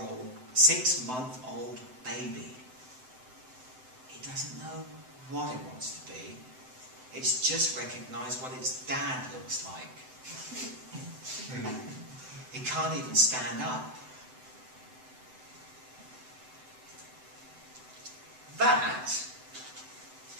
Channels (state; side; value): late; left; 7.9 ms